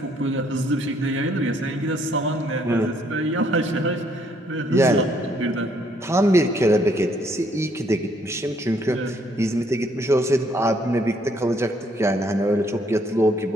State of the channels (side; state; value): both; normal; correlation 0.68